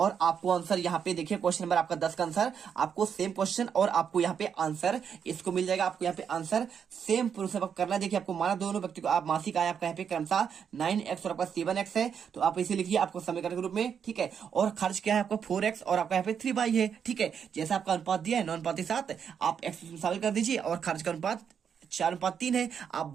आपको आंसर यहाँ पे देखिए, क्वेश्चन नंबर आपका 10 का आंसर आपको सेम क्वेश्चन और आपको यहाँ पे आंसर इसको मिल जाएगा। आपको यहाँ पे आंसर सेम प्रोसेस करना है। देखिए आपको माना दोनों व्यक्ति को आप मासिक आय आपका यहाँ पे क्रमशः 9x और आपका 7x है, तो आप इसे लिखिए आपको समीकरण के रूप में, ठीक है। और खर्च क्या है आपका 4x और आपका यहाँ पे 3y है, ठीक है। जैसा आपका अनुपात दिया है 9:7, आप x शामिल कर दीजिए और खर्च का अनुपात 4:3 है, आप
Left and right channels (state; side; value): quieter; left; 7.5 dB